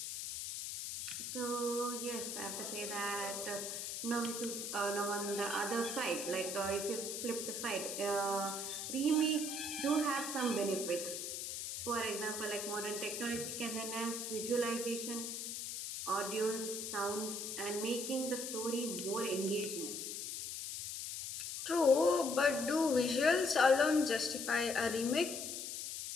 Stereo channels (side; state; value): left; noise; hiss, 5 dB below the sound